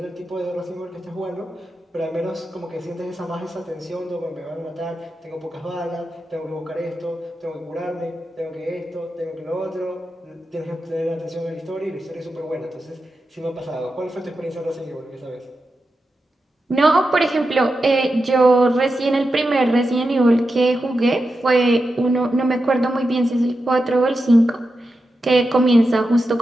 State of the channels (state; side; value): normal; both; correlation 0.89